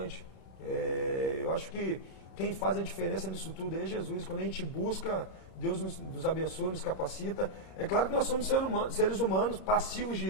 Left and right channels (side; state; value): right; late; 32 ms